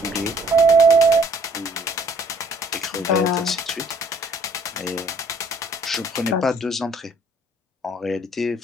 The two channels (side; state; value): both; normal; correlation 0.60